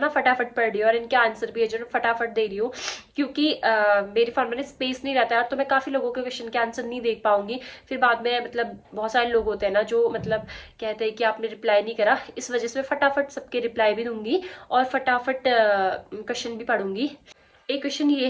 फटाफट पढ़ रही हूँ और इनके आंसर भी है जो फटाफट दे रही हूँ, क्योंकि मेरे फोन में स्पेस नहीं रहता है तो मैं काफ़ी लोगों के क्वेश्चन के आंसर नहीं देख पाऊंगी। फिर बाद में मतलब बहुत सारे लोग होते हैं ना जो मतलब कहते हैं कि आपने रिप्लाई नहीं करा, इस वजह से मैं फटाफट सबके रिप्लाई भी दूंगी और फटाफट क्वेश्चन भी पढ़ूंगी। एक क्वेश्चन ये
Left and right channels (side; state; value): both; identical; correlation 1.00